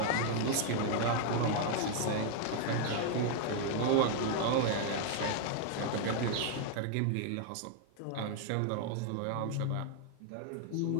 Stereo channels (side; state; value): both; different; correlation 0.00